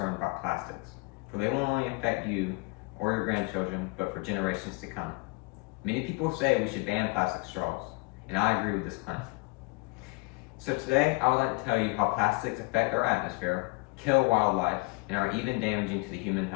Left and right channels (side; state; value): right; quieter; 27.8 dB